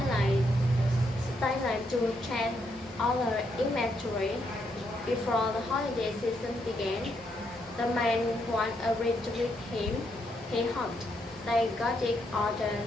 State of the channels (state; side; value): normal; both; correlation 0.77